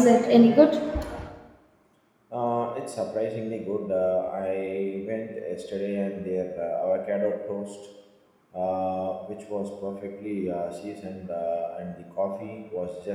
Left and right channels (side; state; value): both; identical; correlation 1.00